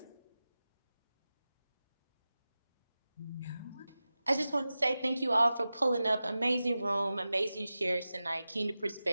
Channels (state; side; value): inverted; both; correlation -0.94